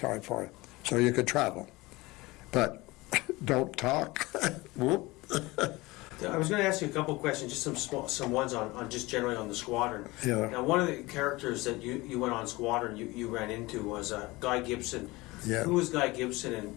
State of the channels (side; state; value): right; quieter; 21.6 dB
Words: for you, so you could travel. But don't talk. Whoop. I was going to ask you a couple of questions, just some ones on just generally on the Squadron. Yeah. Now, one of the characters that you went on Squadron you ran into was Guy Gibson. Yeah. Who was Guy Gibson,